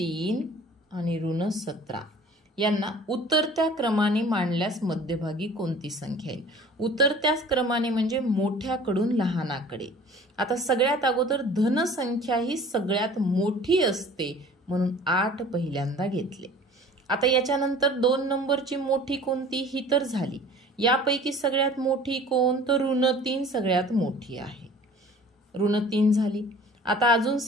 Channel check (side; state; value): both; normal; correlation 0.47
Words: आणि ऋण 17 यांना उतरत्या क्रमाने मांडल्यास मध्यभागी कोणती संख्या येईल? उतरत्या क्रमाने म्हणजे मोठ्याकडून लहानाकडे. आता सगळ्यात अगोदर धन संख्या ही सगळ्यात मोठी असते म्हणून 8 पहिल्यांदा घेतले. आता याच्यानंतर 2 नंबरची मोठी कोणती ही तर झाली. यापैकी सगळ्यात मोठी कोण तर ऋण 3 सगळ्यात मोठी आहे. ऋण 3 झाली. आता अजून